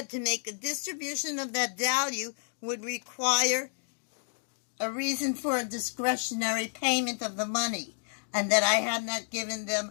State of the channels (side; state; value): right; silent; digital silence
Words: to make a distribution of that value would require a reason for a discretionary payment of the money, and that I had not given